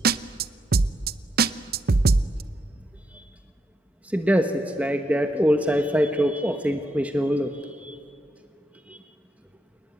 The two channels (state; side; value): normal; both; correlation 0.80